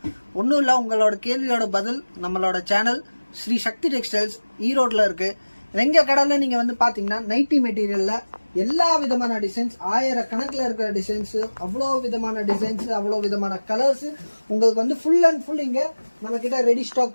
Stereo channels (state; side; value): inverted; both; correlation -1.00